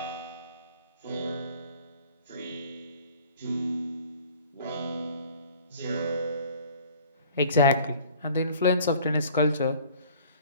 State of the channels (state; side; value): inverted; both; correlation -0.51